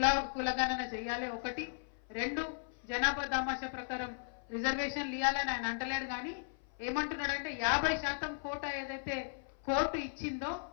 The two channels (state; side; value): silent; right; 54 dB below the other